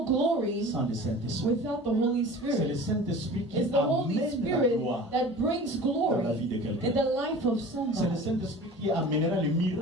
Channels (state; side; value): normal; both; correlation 0.40